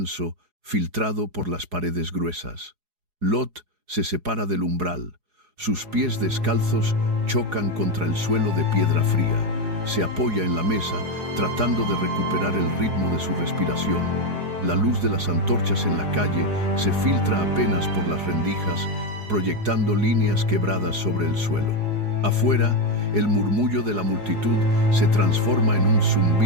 filtrado por las paredes gruesas. Lot se separa del umbral. Sus pies descalzos chocan contra el suelo de piedra fría. Se apoya en la mesa, tratando de recuperar el ritmo de su respiración. La luz de las antorchas en la calle se filtra apenas por las rendijas, proyectando líneas quebradas sobre el suelo. Afuera, el murmullo de la multitud se transforma en un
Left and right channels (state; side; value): late; left; 4.8 ms